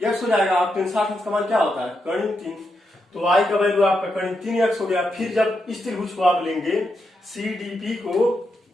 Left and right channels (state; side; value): normal; both; correlation 0.84